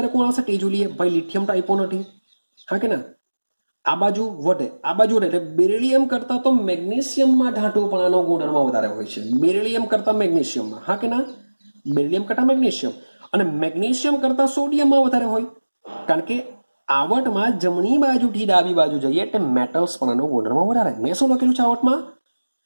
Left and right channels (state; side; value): inverted; both; correlation -1.00